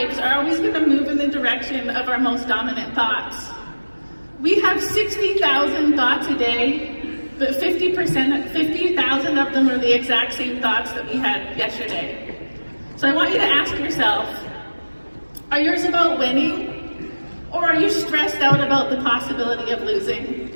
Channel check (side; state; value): both; inverted; correlation -1.00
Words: are always going to move in the direction of our most dominant thoughts. We have 60,000 thoughts a day, but 50,000 of them are the exact same thoughts that we had yesterday. So I want you to ask yourself, are yours about winning, or are you stressed out about the possibility of losing?